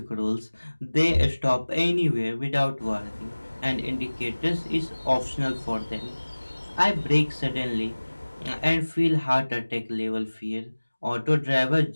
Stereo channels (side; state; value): both; inverted; correlation -1.00